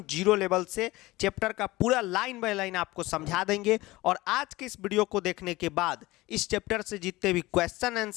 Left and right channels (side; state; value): right; quieter; 19.6 dB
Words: जीरो लेवल से चैप्टर का पूरा लाइन बाय लाइन आपको समझा देंगे। और आज के इस वीडियो को देखने के बाद इस चैप्टर से जितने भी क्वेश्चन